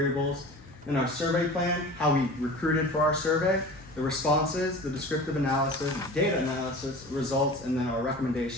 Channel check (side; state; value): both; normal; correlation 0.38